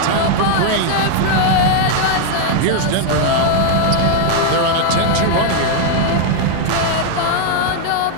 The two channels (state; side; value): different; both; correlation 0.00